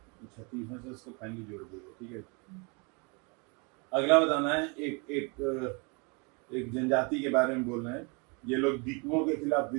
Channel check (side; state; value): left; quieter; 31.7 dB